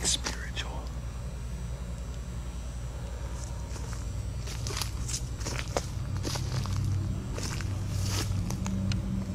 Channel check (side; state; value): both; identical; correlation 1.00